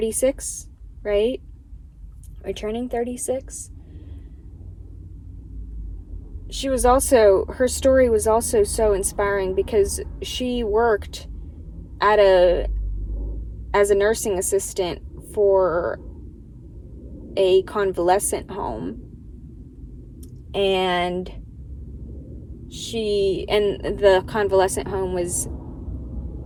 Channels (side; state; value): both; identical; correlation 1.00